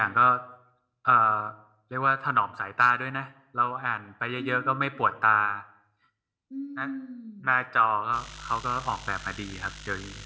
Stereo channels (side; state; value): both; identical; correlation 1.00